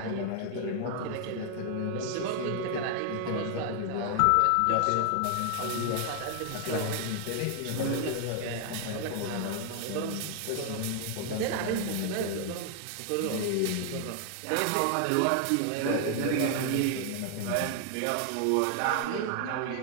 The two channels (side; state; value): both; different; correlation 0.00